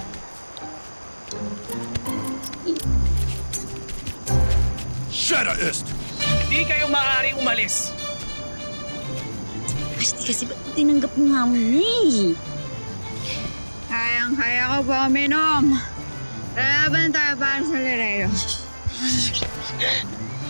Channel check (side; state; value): both; inverted; correlation -1.00